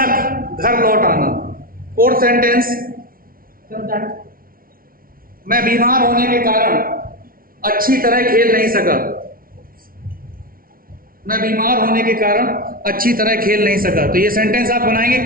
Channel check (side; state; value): left; late; 0.43 ms